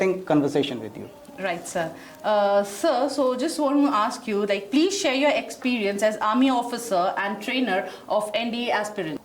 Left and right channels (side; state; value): both; identical; correlation 1.00